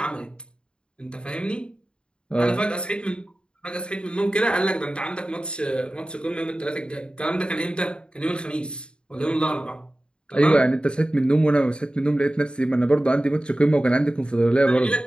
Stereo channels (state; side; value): late; right; 0.052 ms